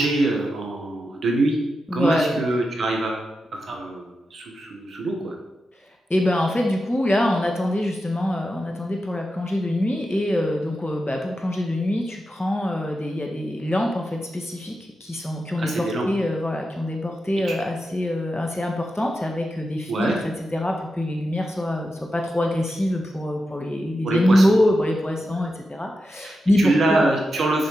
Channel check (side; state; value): both; normal; correlation 0.89